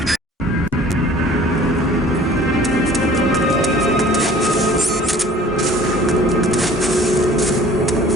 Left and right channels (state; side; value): normal; both; correlation 0.49